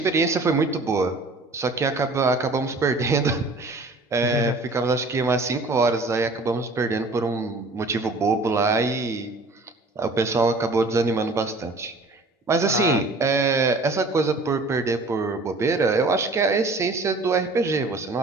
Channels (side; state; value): left; quieter; 3.1 dB